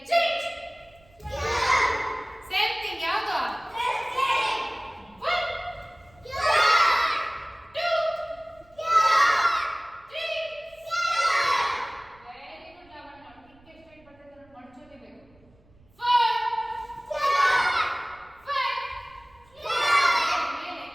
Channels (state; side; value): noise; right; rumble, 30 dB below the sound